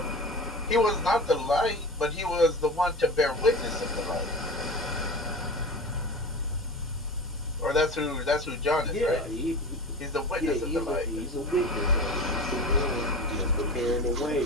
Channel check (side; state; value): both; normal; correlation 0.32